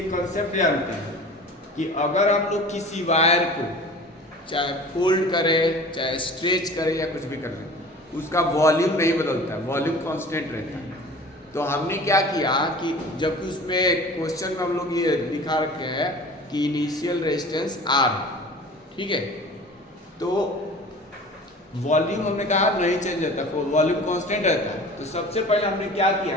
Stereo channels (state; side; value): normal; both; correlation 0.41